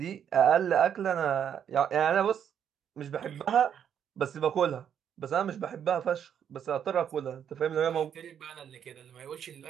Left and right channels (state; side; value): quieter; left; 8.7 dB